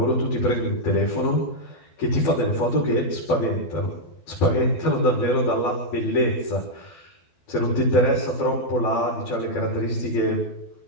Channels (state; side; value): late; right; 12 ms